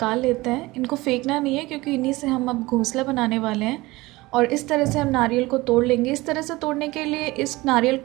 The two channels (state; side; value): quieter; left; 20.6 dB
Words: लेते हैं। इनको फेंकना नहीं है क्योंकि इन्हीं से हम अब घोंसला बनाने वाले हैं। और इस तरह से हम नारियल को तोड़ लेंगे। इस तरह से तोड़ने के लिए इस नारियल